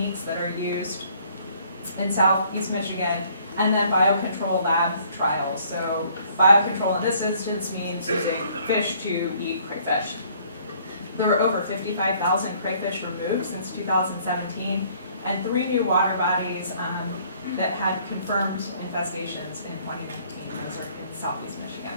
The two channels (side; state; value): both; inverted; correlation -0.61